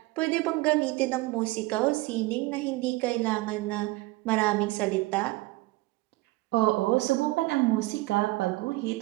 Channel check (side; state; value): left; quieter; 20.7 dB